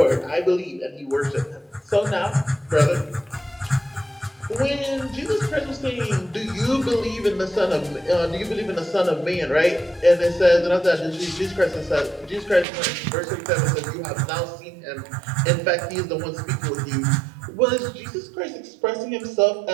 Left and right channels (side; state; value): left; drops out; at 12.7 s